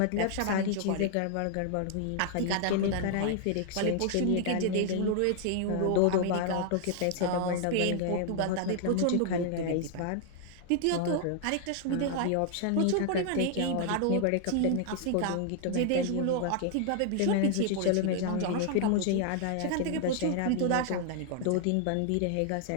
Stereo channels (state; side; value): different; both; correlation 0.00